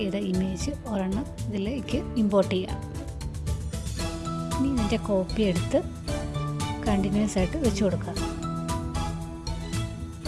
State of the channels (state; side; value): identical; both; correlation 1.00